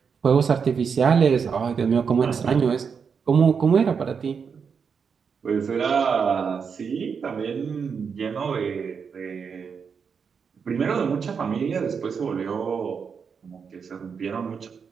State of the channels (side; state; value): left; quieter; 6.2 dB